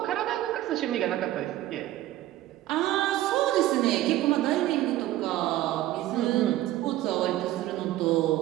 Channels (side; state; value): left; quieter; 14.9 dB